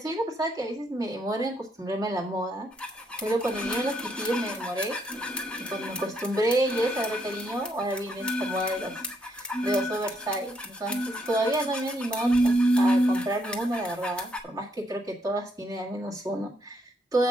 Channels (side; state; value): both; normal; correlation 0.74